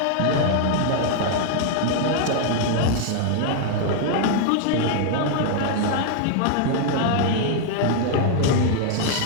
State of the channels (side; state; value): both; different; correlation 0.00